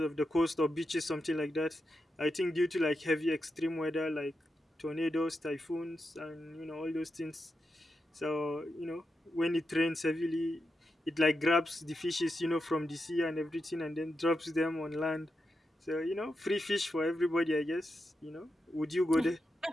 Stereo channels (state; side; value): normal; both; correlation 0.87